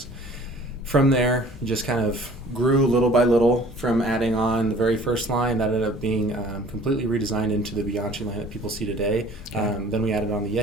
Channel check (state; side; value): normal; both; correlation 0.50